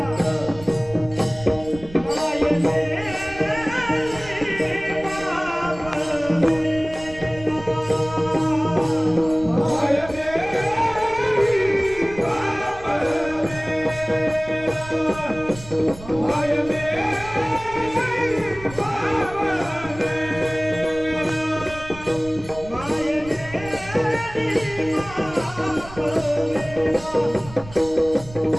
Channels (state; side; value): noise; right; rumble, 17 dB below the sound